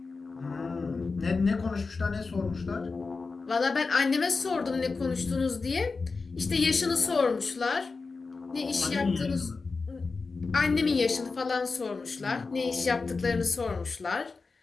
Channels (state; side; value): quieter; right; 4.2 dB